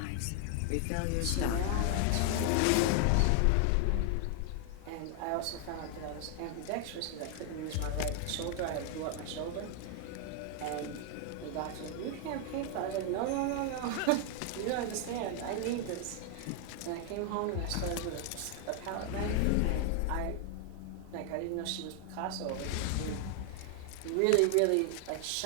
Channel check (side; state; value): both; different; correlation 0.00